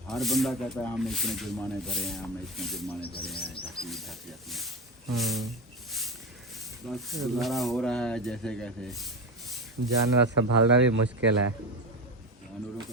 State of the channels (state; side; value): normal; both; correlation 0.20